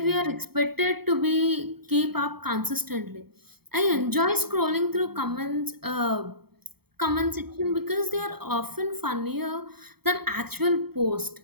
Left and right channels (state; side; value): late; left; 0.96 ms